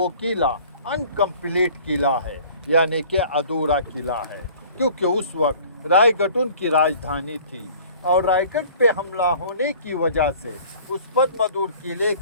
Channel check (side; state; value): both; inverted; correlation -0.50